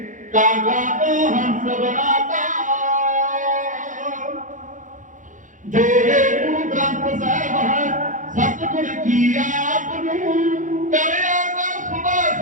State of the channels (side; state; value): left; late; 0.37 ms